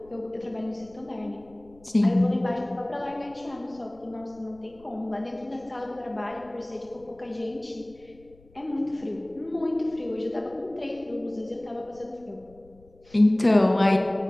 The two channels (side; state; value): left; noise; rumble, 27 dB below the sound